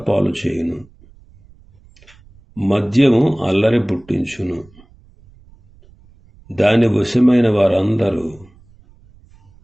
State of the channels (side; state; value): right; noise; rumble, 27 dB below the sound